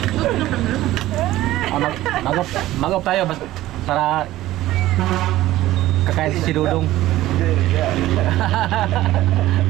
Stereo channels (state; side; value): quieter; left; 15.6 dB